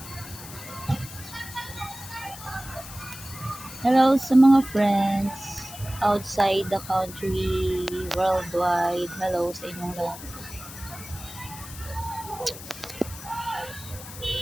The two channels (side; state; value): left; noise; hiss, 14 dB below the sound